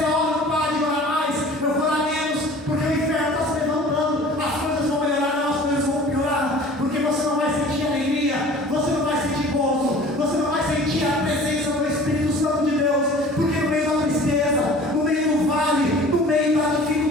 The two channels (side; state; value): both; normal; correlation 0.45